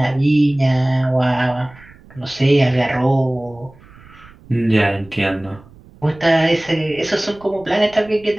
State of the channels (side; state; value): right; noise; rumble, 24 dB below the sound